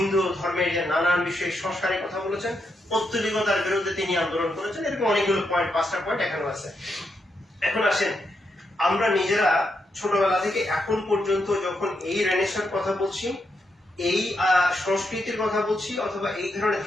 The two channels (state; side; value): normal; both; correlation 0.82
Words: ধর্মের যে নানান বিষয়ে সংস্কারের কথা বলেছেন, পৌত্তলিকতার বিরুদ্ধে তিনি আন্দোলন করেছেন। এরকম অনেকগুলো পয়েন্ট, 5টা পয়েন্ট এখানেও আছে। এখন আসেন, আমরা নিজেরা ছোটবেলা থেকে এখন পর্যন্ত যখন এই রেনেসাঁর কথা বলছি, এই সংস্কৃতির কথা বলছি, অথবা এই ধরনের